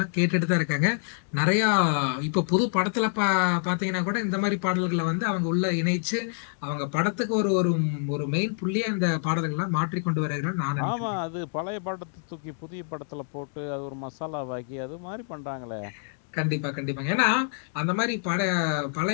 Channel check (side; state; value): right; silent; digital silence